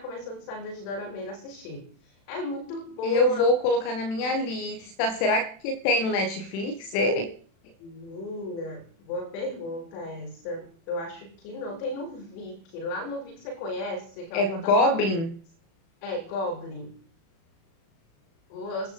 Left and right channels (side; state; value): right; late; 36 ms